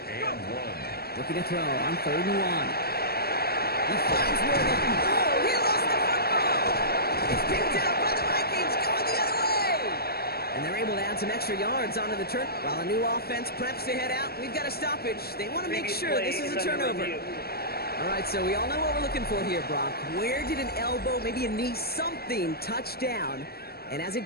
1. Looking to throw on third and 1. He finds Worthing. Oh, he lost the football. It's picked up by the Vikings going the other way. And they're able to add some extra yards onto the turn. While a new offense preps to head out, we've got a stoppage. They want to make sure this is a turnover. All right, so we all know what we're looking for here, Brock. Where did an elbow, maybe a knee, something touch down? And as it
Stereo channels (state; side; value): late; right; 0.45 ms